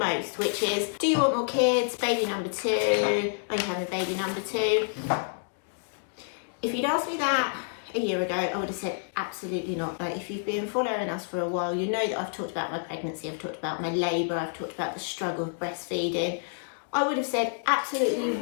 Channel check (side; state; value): right; silent; digital silence